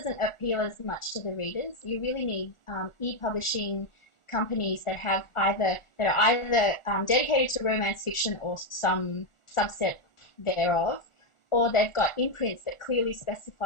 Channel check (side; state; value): right; late; 1.4 ms